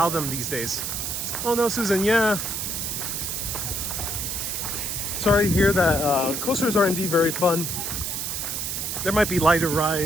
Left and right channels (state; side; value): noise; right; hiss, 3 dB below the sound